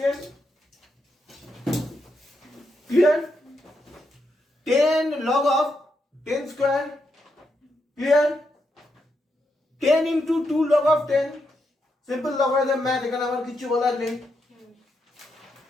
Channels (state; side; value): normal; both; correlation 0.82